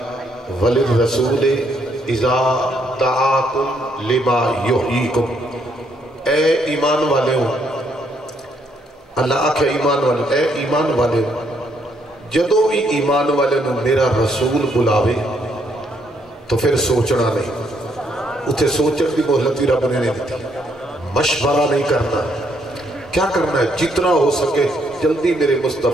وللرسول اذا دعاکم لما یحییکم اے ایمان والے ہو اللہ آکھے ایمان والے اے ایمان والے ہو جدو بھی ایمان والے نے میرا رسول بلاوے تو پھر سوچنا نہیں اتھے سوچن کی مہلتی رب نے نہیں دیتی مشورہ نہیں کرنا کیا کرنا ہے جتنا ہو سکے جلدی میرے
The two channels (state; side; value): normal; both; correlation 0.72